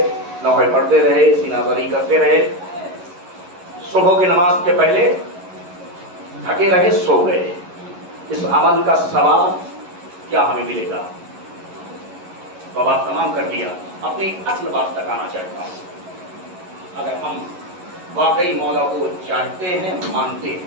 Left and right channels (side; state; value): left; late; 11 ms